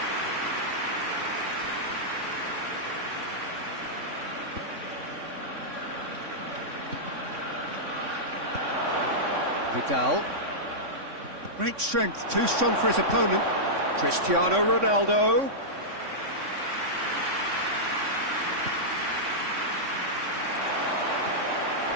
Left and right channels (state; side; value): late; left; 3.6 ms